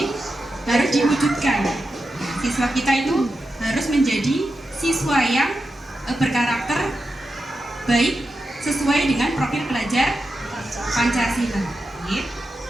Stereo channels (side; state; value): both; normal; correlation 0.90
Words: diwujudkan. Siswa kita itu harus menjadi siswa yang berkarakter baik sesuai dengan profil pelajar Pancasila.